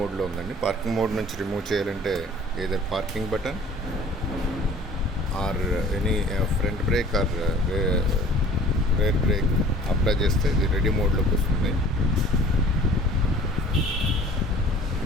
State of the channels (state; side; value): normal; both; correlation 0.49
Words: ఉందండి. పార్కింగ్ మోడ్ నుంచి రిమూవ్ చేయాలంటే either parking button or any front brake are rare break apply చేస్తే ఇది రెడీ మోడ్లోకి వస్తుంది.